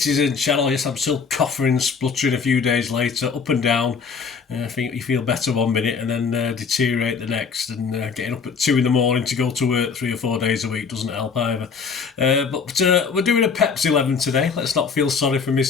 channel. Yes, I'm still coughing and spluttering a few days later, up and down. I think you feel better one minute and then deteriorate the next, and getting up at 2 in the morning to go to work 3 or 4 days a week doesn't help either. But we're doing a Pepsi 11 today. Let's not feel sorry for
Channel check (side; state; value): right; quieter; 5.6 dB